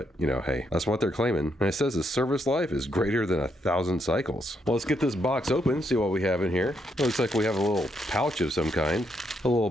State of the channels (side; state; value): both; normal; correlation 0.77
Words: hey, that's what they're claiming. And it says the service life is greater than 1,000 cycles. Well, let's get this box open, see what we have in here. It looks like we have a little pouch of some kind. A